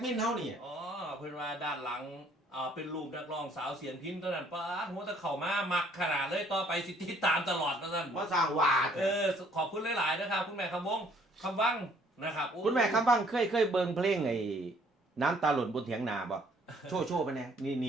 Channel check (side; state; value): both; normal; correlation 0.62